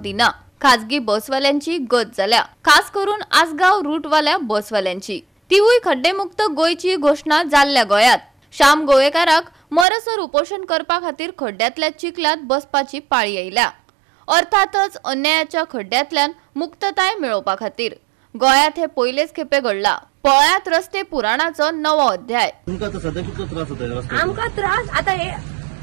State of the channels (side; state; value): left; drops out; at 9.9 s